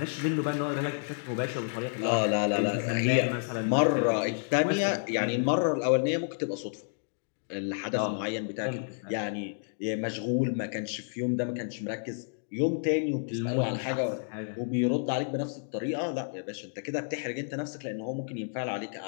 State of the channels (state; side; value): silent; right; digital silence